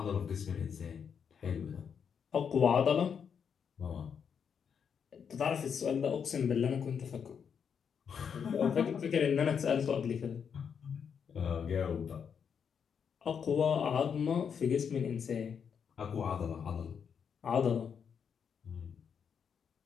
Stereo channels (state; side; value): quieter; right; 7.1 dB